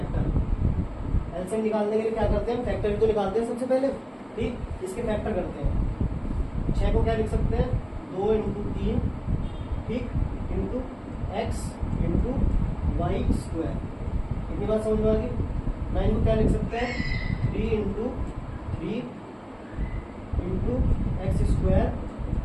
एलसीएम निकालने के लिए क्या करते हैं, फैक्टर भी तो निकालते हैं सबसे पहले। ठीक, इसके फैक्टर करते हैं। 6 को क्या लिख सकते हैं, 2 × 3, ठीक, into x into y square. इतनी बात समझ में आ गई। 9 को क्या लिख सकते हैं, 3 × 3 इंटू x²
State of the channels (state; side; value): identical; both; correlation 1.00